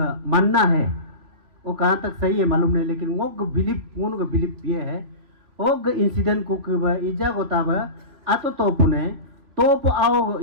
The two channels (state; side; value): late; left; 3.0 ms